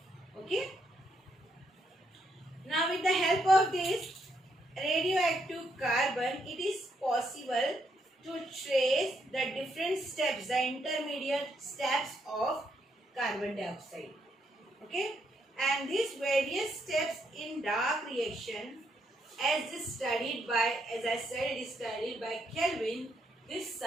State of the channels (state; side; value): normal; both; correlation 0.76